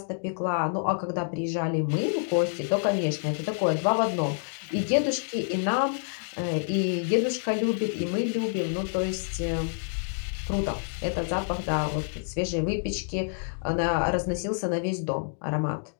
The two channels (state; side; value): silent; right; digital silence